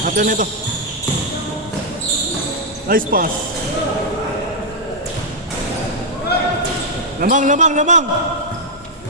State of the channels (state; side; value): normal; both; correlation -0.03